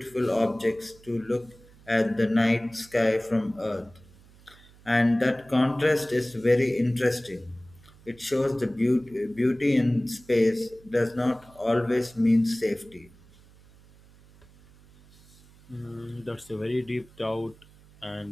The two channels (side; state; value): right; noise; hum, 26 dB below the sound